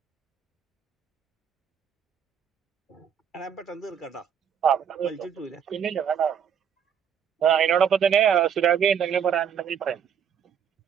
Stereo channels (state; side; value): quieter; left; 8.0 dB